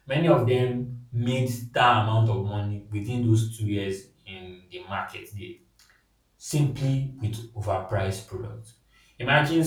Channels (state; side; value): identical; both; correlation 1.00